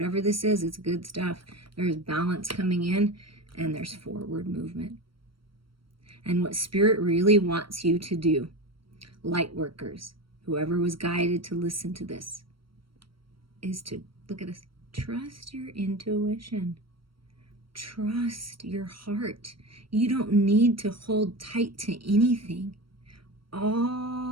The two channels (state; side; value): late; left; 0.74 ms